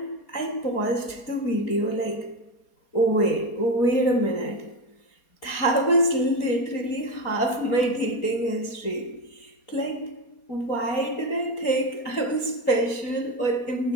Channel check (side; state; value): right; late; 4.3 ms